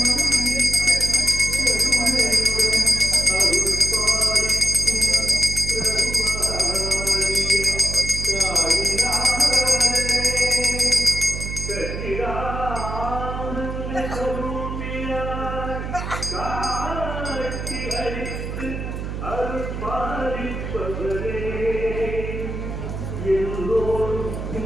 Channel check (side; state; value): right; noise; hum, 5 dB below the sound